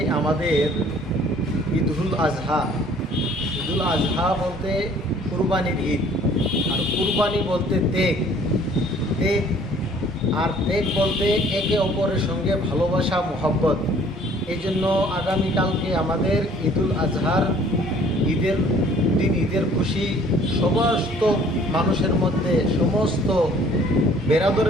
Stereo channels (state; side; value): normal; both; correlation 0.55